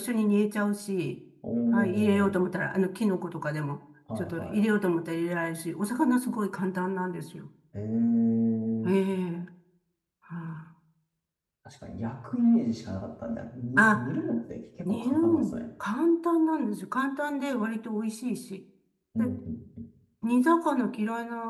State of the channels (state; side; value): identical; both; correlation 1.00